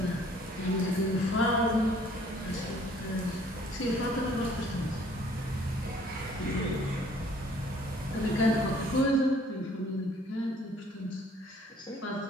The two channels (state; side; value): normal; both; correlation 0.58